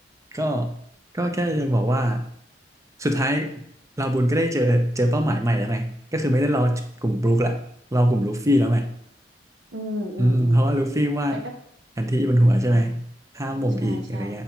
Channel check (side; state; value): both; normal; correlation 0.88